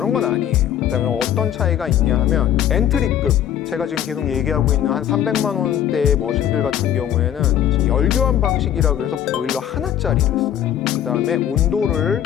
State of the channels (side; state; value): right; quieter; 10.5 dB